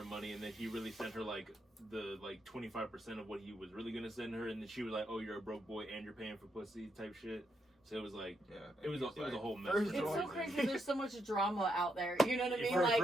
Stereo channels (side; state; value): both; normal; correlation 0.80